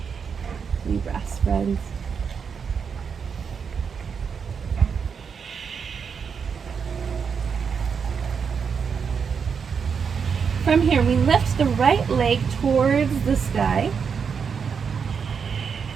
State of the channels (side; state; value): left; quieter; 6.3 dB